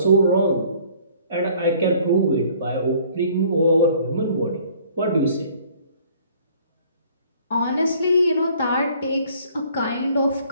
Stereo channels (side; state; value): both; inverted; correlation -0.56